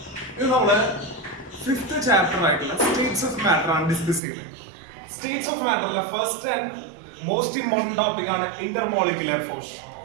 ഇത് നമ്മള് fifth chapter ആയിട്ടുള്ള സ്റ്റേറ്റ്സ് ഓഫ് മാറ്റർ ആണ് ഡിസ്കസ് ചെയ്യുന്നത്. സ്റ്റേറ്റ്സ് ഓഫ് മാറ്ററിലെ first and most important topic ആണ് ഇന്റർമോളിക്കുലർ ഫോഴ്സ്.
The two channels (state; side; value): drops out; left; at 4.2 s